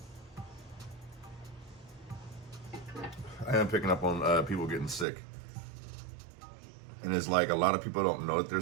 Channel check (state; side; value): drops out; left; at 5.1 s